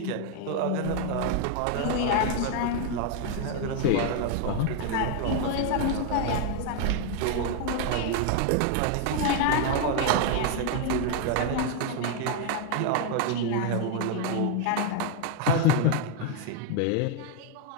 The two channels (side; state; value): both; different; correlation 0.01